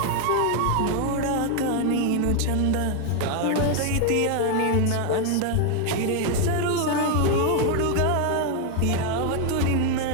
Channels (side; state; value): both; different; correlation 0.01